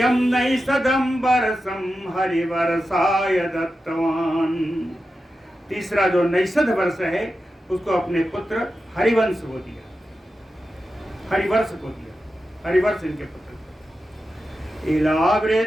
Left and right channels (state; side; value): normal; both; correlation 0.91